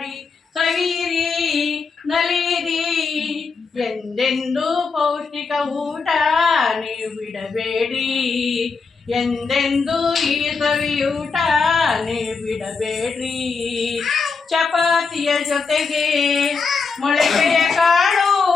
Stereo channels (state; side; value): quieter; right; 4.9 dB